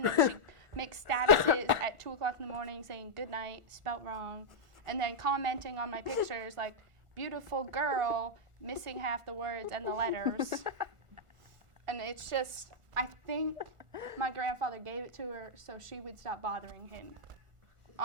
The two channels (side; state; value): left; late; 1.4 ms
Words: then she makes statuses at 2 o'clock in the morning saying good night, spelt wrong, and then commenting on my pictures like, beautiful girl, missing half the words and the letters. And it's just, I think my grandfather gave it to her so she would stop bothering him.